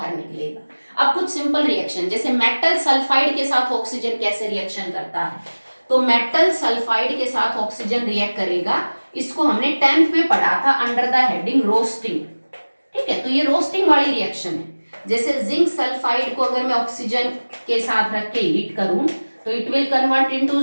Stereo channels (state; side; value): inverted; both; correlation -1.00